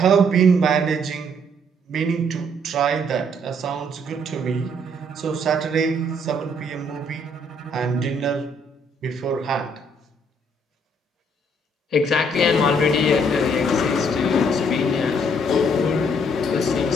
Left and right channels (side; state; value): both; normal; correlation 0.67